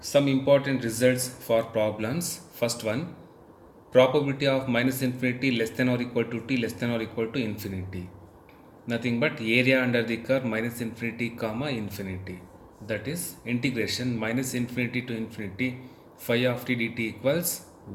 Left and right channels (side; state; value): both; identical; correlation 1.00